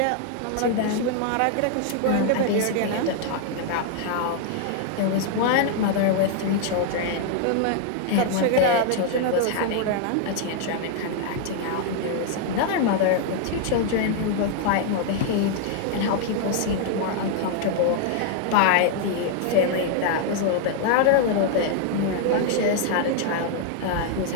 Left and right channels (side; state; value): both; different; correlation 0.00